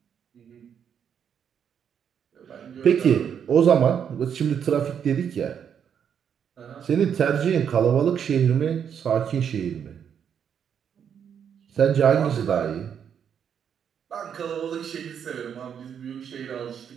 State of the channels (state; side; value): quieter; left; 8.0 dB